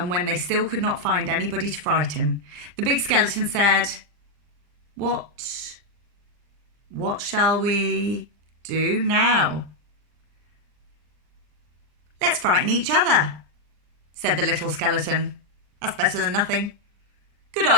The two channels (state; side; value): late; left; 39 ms